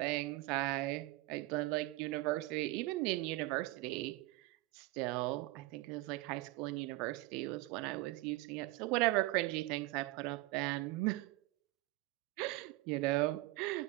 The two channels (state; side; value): quieter; left; 19.6 dB